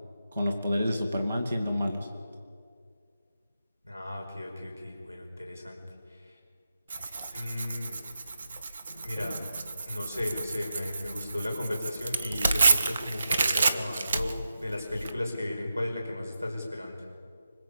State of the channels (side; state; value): both; inverted; correlation -0.89